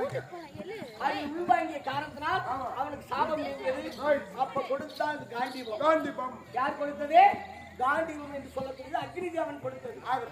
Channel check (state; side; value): identical; both; correlation 1.00